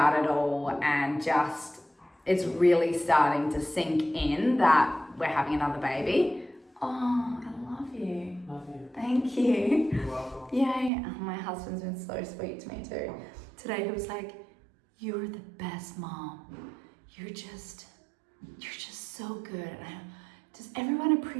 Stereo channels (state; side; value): drops out; left; at 10.9 s